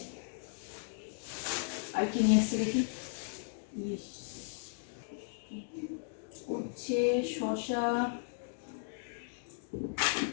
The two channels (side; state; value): right; silent; digital silence